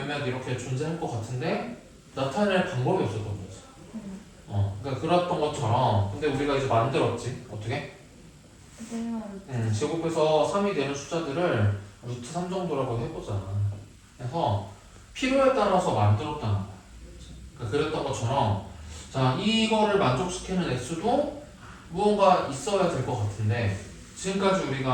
이렇게 존재할 것 같은데 나타낼 방법이 없었던 거지. 그러니까 그랬던 것처럼 근데 우리가 이제 만들었지. 어떻게? 제곱해서 3이 되는 숫자들을 루트 3 정도라고 해보자. 그래서 필요에 따라서 만들었다는 거야. 그러니까 그랬던 것처럼 자 이거를 만족시키는 x도 무언가 있어야 될 것 같은데 지금까지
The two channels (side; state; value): both; identical; correlation 1.00